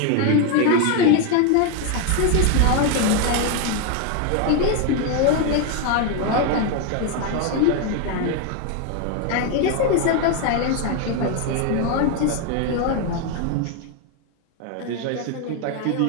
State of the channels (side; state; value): both; different; correlation 0.01